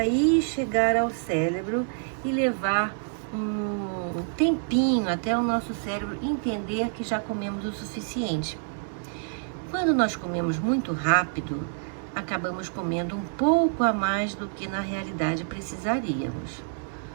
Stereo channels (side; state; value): left; silent; 60 dB below the other